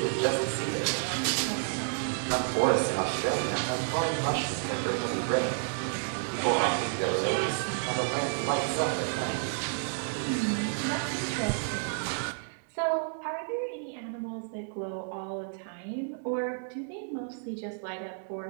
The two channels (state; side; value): silent; left; digital silence